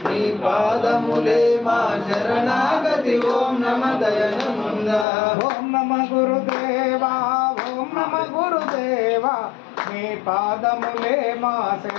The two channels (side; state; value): right; drops out; at 5.1 s